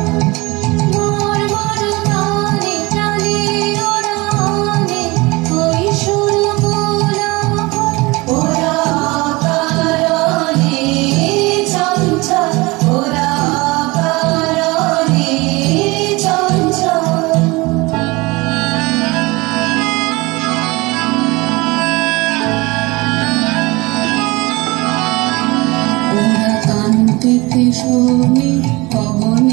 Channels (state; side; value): quieter; left; 23.4 dB